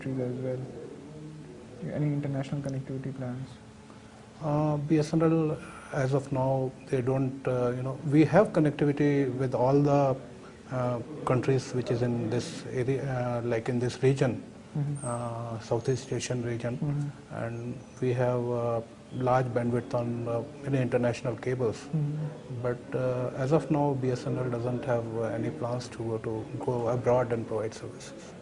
as well? Any international connectivity plans? BSNL, as of now, they don't, we have connectivity with all the countries which is in this area, like in this region, Southeast Asian region, and we have large bandwidth on many international cables. But as of now, BSNL doesn't have any plans to go abroad and provide services.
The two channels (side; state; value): both; identical; correlation 1.00